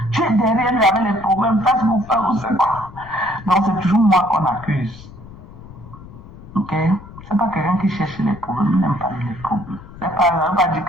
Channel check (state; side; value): noise; left; rumble, 18 dB below the sound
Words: Tu es derrière lui avec les problèmes, face pour faire ou c'est quoi. Donc c'est toujours moi qu'on accuse. Ok? C'est pas quelqu'un qui cherche les problèmes, il n'aime pas les problèmes. C'est pas, pas dire